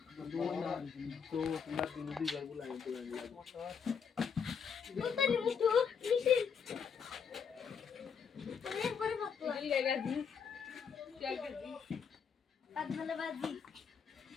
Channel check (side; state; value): right; quieter; 6.7 dB